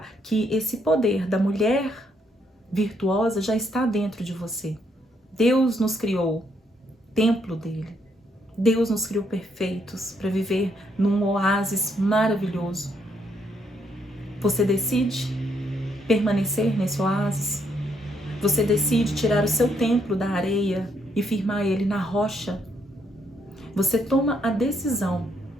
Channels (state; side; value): normal; both; correlation 0.74